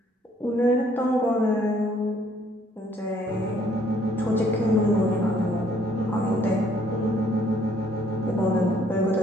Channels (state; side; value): normal; both; correlation 0.64